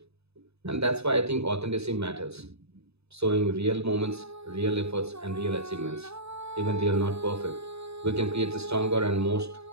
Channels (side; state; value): left; late; 0.79 ms